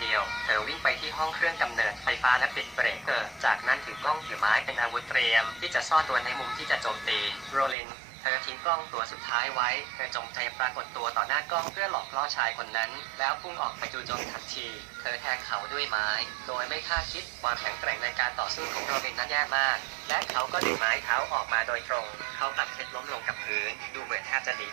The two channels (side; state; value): left; drops out; at 7.8 s